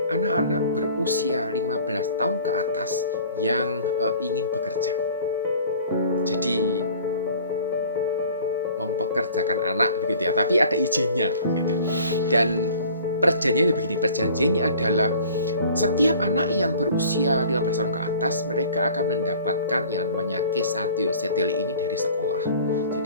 anak-anak berusia 15 tahun ke atas yang ingin bekerja. Jadi mempekerjakan anak begitu ya, tapi ada izinnya gitu. Dan perjanjiannya adalah setiap anak yang berusia 15 tahun ke atas, mereka akan mendapatkan yang namanya Kesätyöseteli ini dari sekolah.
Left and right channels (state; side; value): inverted; both; correlation -0.48